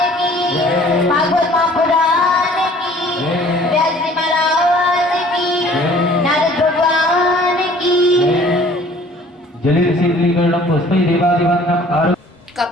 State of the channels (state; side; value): normal; both; correlation 0.52